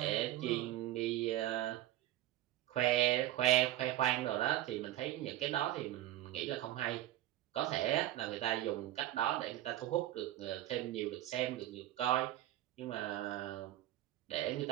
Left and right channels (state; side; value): quieter; left; 14.0 dB